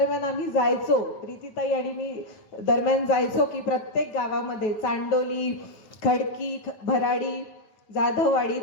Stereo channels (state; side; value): late; right; 9.2 ms